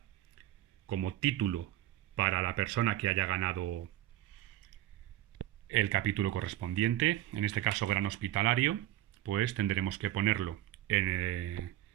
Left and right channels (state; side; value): quieter; left; 14.0 dB